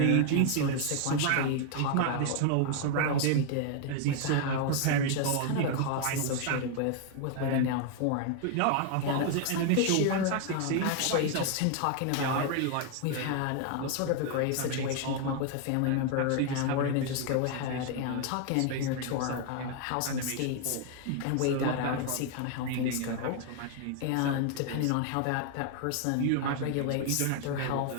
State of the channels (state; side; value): different; both; correlation 0.00